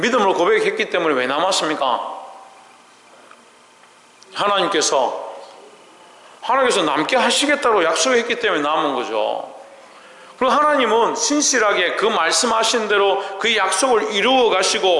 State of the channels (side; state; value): both; identical; correlation 1.00